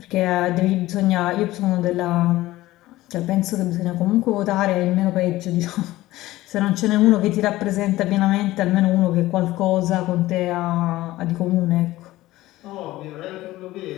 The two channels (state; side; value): quieter; right; 16.9 dB